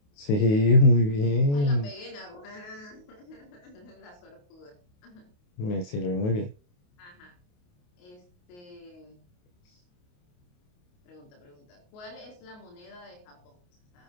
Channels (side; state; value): right; late; 28 ms